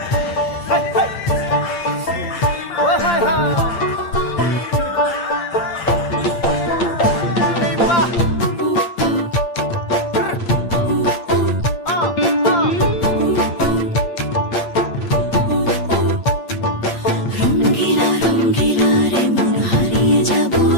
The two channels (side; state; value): right; late; 8.7 ms